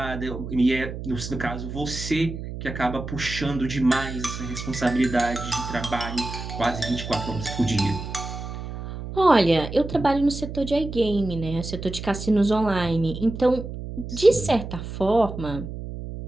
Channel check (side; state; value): right; noise; hum, 8 dB below the sound